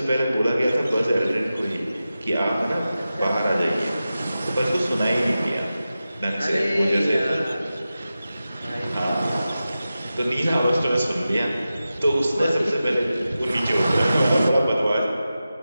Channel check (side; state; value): both; inverted; correlation -0.93